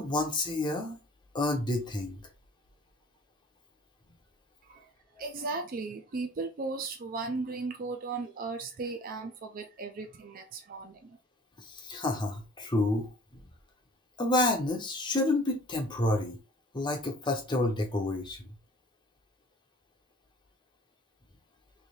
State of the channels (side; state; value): both; normal; correlation 0.49